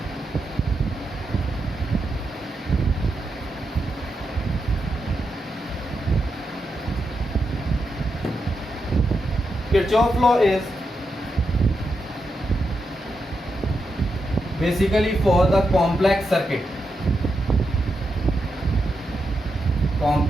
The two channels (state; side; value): normal; both; correlation 0.85